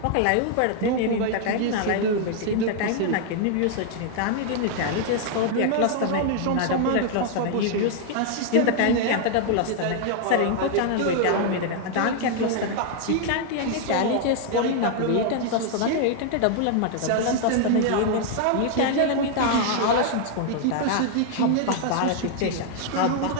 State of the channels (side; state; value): both; different; correlation 0.00